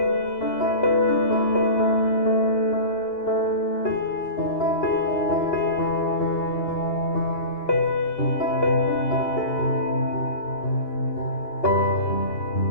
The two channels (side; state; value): right; late; 2.9 ms